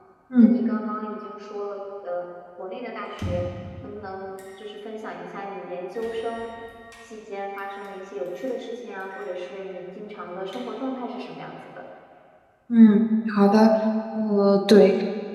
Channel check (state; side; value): identical; both; correlation 1.00